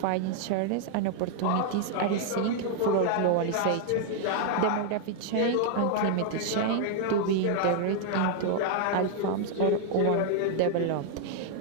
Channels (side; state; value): both; different; correlation 0.00